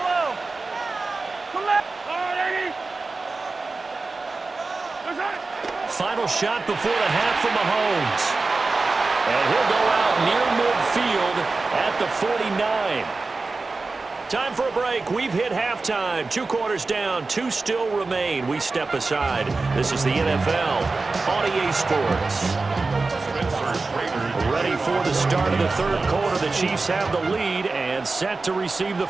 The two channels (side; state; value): left; quieter; 3.8 dB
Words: Collect. Final shot before the half from Mahomes. And he'll go out near midfield at the 49. Time for a break. We've hit halftime. 2 quarters down. 2 still remain. We step aside. This is the NFL on EA Sports. Ready for the start of the 3rd quarter. The Chiefs have the lead and set to receive the